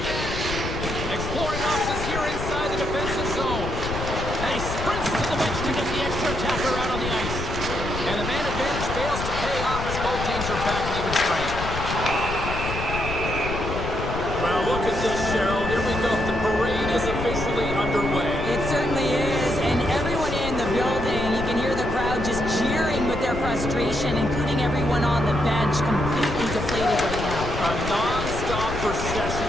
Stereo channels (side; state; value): left; noise; rumble, 5 dB below the sound